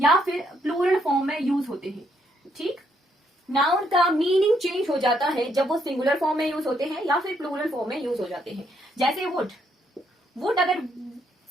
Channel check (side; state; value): both; normal; correlation 0.73